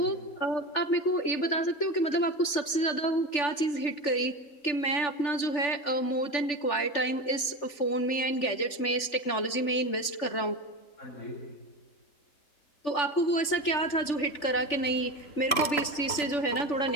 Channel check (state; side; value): late; right; 3.4 ms